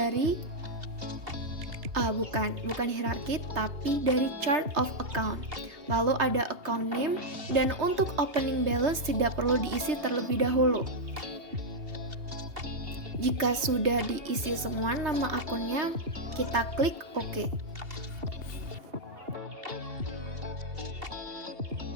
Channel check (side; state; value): left; late; 2.7 ms